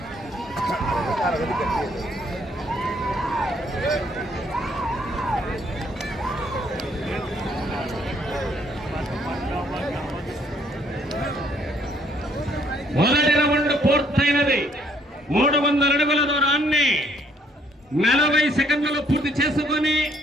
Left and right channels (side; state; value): both; normal; correlation 0.66